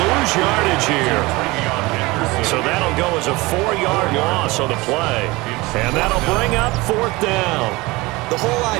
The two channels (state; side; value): quieter; left; 22.2 dB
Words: lose yardage here. So that'll go as a 4-yard loss on the play. And that'll bring up 4th down. The whole